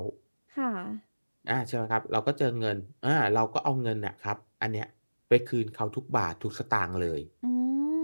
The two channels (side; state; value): both; inverted; correlation -1.00